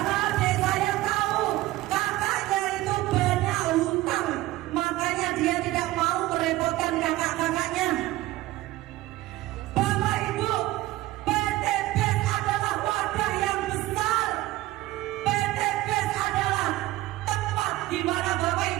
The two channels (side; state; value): left; quieter; 17.1 dB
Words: adik saya tahu kakaknya itu banyak hutang, makanya dia tidak mau merepotkan kakak-kakaknya. Bapak Ibu, PT BES adalah wadah yang besar. PT BES adalah tempat di mana Bapak